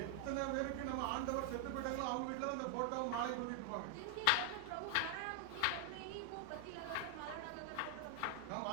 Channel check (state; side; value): different; both; correlation 0.00